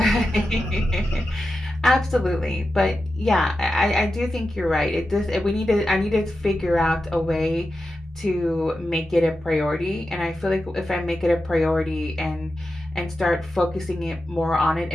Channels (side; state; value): both; normal; correlation 0.91